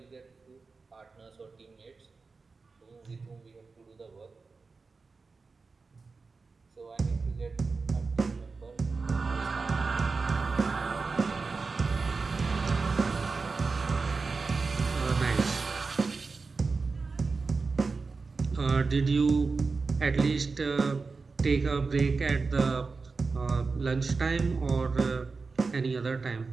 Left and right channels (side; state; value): left; quieter; 4.3 dB